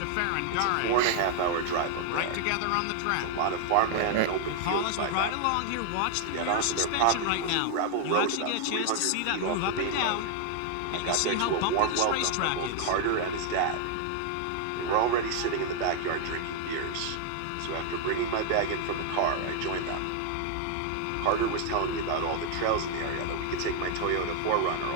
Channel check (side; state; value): both; different; correlation 0.00